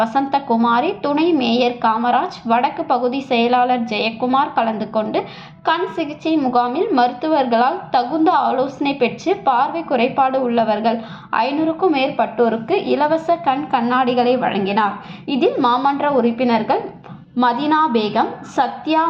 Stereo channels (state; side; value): identical; both; correlation 1.00